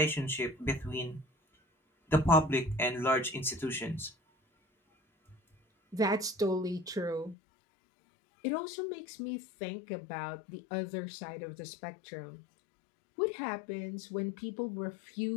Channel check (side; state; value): right; drops out; at 7.4 s